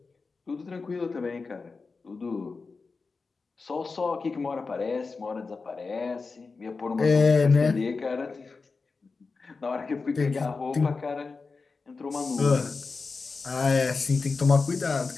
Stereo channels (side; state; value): right; quieter; 4.3 dB